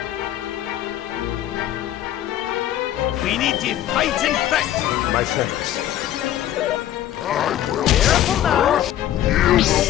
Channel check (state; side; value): quieter; right; 12.4 dB